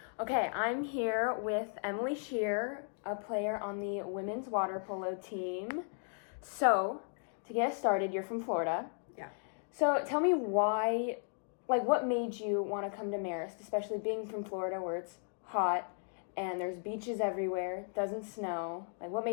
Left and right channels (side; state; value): right; silent; 54 dB below the other